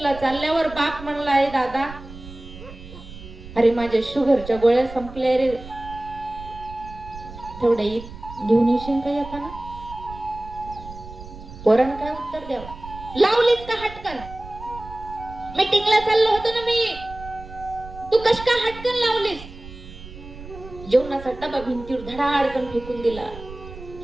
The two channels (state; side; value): noise; right; rumble, 15 dB below the sound